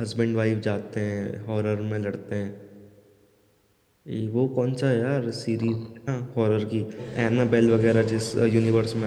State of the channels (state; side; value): identical; both; correlation 1.00